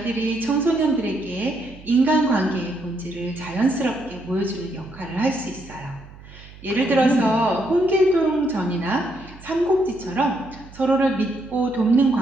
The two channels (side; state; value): right; noise; hum, 19 dB below the sound